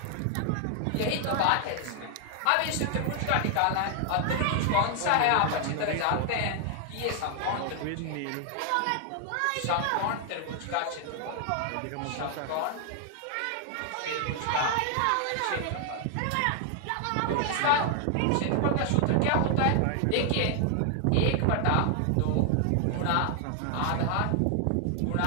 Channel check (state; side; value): different; both; correlation 0.00